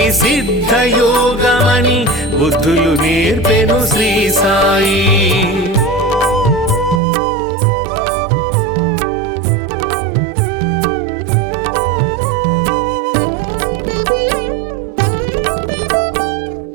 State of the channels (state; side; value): drops out; left; at 7.0 s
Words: సిద్ధయోగమని బుద్ధులు నేర్పెను శ్రీ సాయి.